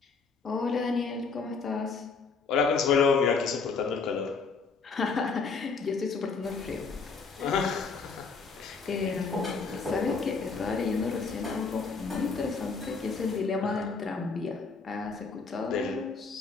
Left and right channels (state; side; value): quieter; right; 4.8 dB